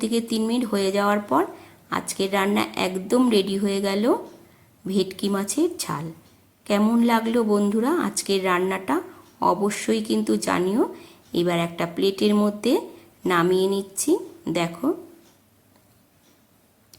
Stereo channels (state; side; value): identical; both; correlation 1.00